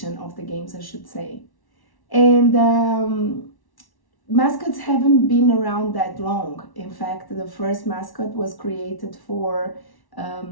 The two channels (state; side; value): late; right; 1.1 ms